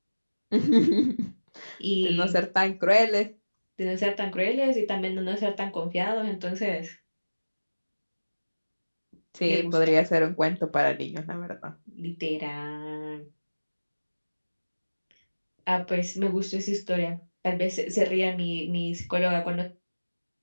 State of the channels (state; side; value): inverted; both; correlation -1.00